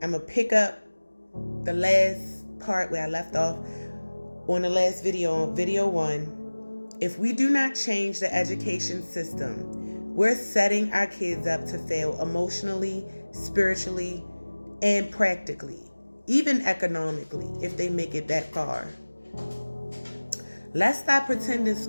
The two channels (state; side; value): inverted; both; correlation -1.00